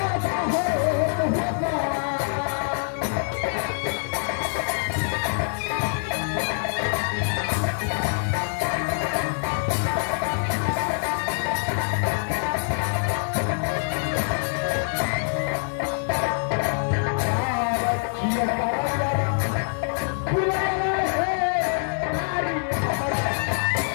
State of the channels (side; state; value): right; silent; digital silence